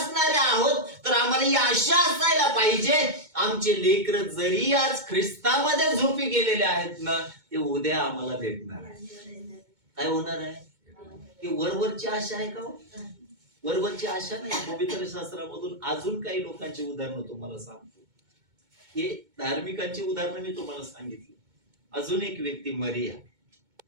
आहोत तर आम्हाला ही आशा असायला पाहिजे, आमचे लेकर जरी आज ख्रिस्तामध्ये झोपी गेलेले आहेत ना, ते उद्या आम्हाला भेटणार आहे. काय होणार आहे? ही वरवरची आशा आहे का? वरवरची आशा नाही. पवित्र शास्त्रामधून अजून काही लोकांची उदाहरणं तुम्हाला सांगतो. हे धार्मिकांची उदाहरणं मी तुम्हाला सांगितली. अजून एक व्यक्ती मरिया,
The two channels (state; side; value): late; left; 2.2 ms